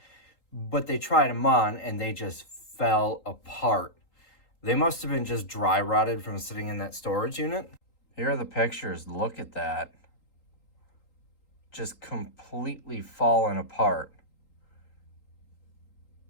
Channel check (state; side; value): late; right; 3.8 ms